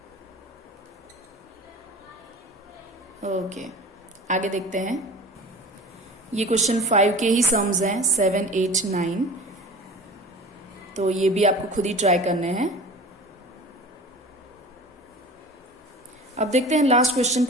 ओके, आगे देखते हैं। ये क्वेश्चन 5 के ही सम्स हैं, 7, 8, 9, तो ये भी आपको खुद ही ट्राई करने हैं। अब देखते हैं लास्ट क्वेश्चन,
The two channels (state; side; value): normal; both; correlation 0.38